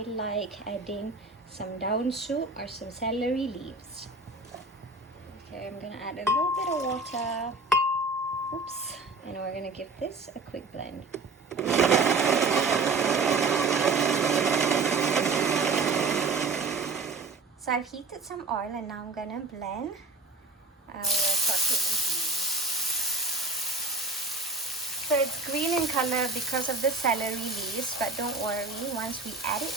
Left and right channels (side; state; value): left; quieter; 3.8 dB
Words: like adding some daun soup or some celery leaves. Okay, I'm gonna add a little bit of water. Oops, and we're gonna give this a quick blend. So I've heated some oil, and now I'm gonna blend our sauteed ingredients. So it's green in color because of the celery leaves, but don't worry, once we add it